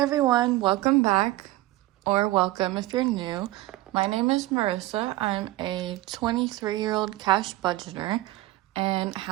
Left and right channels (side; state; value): left; quieter; 17.2 dB